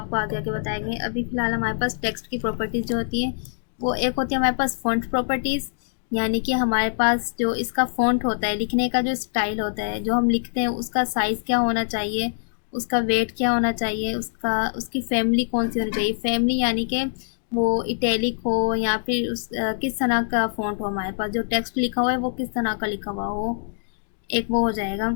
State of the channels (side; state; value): right; silent; digital silence